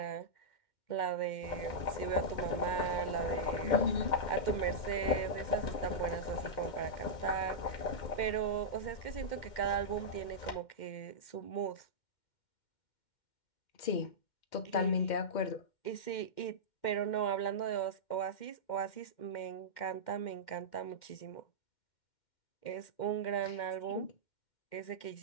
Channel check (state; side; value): late; right; 2.1 ms